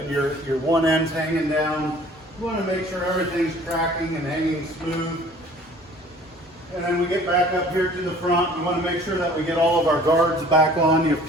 your one end's hanging down. You want to make sure everything's tracking and hanging smooth. And then we get back up here to the front. We want to make sure that we get all of our guards back on.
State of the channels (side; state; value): both; normal; correlation 0.51